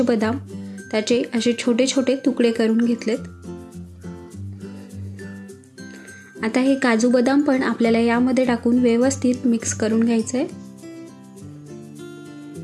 बदाम त्याचे असे छोटे छोटे तुकडे करून घेतलेत. आता हे काजू बदाम पण आपल्याला यामध्ये टाकून व्यवस्थित मिक्स करून घ्यायचं आहे.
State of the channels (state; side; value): identical; both; correlation 1.00